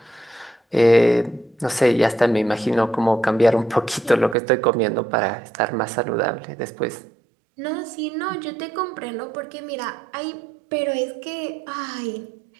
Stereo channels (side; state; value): left; drops out; at 4.4 s